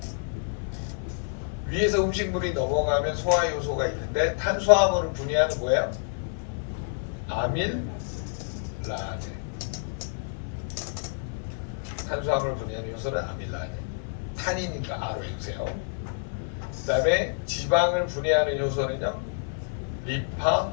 위에서 음식물이 넘어가면 소화 효소가 있는데 탄수화물을 분해하는 뭐예요? 아밀라제. 탄수화물을 분해하는 요소는 아밀라제. 탄이니까 R로 해주세요. 그 다음에 지방을 분해하는 요소는요,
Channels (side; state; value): right; silent; 55 dB below the other